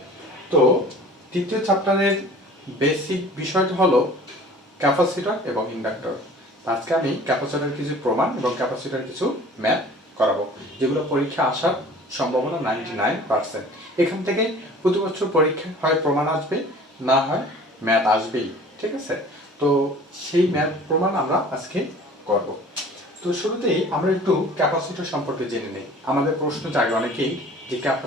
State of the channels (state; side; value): normal; both; correlation 0.46